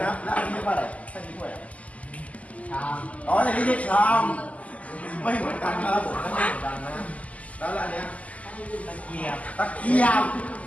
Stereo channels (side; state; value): right; late; 0.071 ms